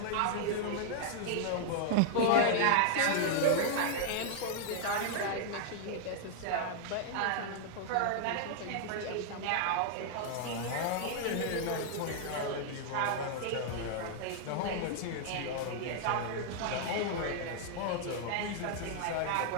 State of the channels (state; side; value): different; both; correlation 0.00